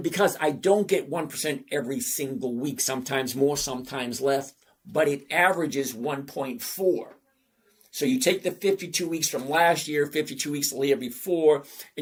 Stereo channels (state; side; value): identical; both; correlation 1.00